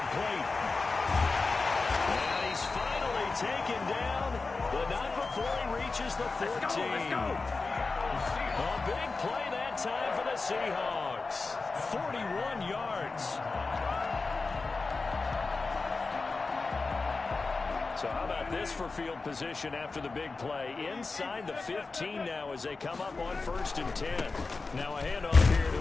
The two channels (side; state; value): right; quieter; 3.9 dB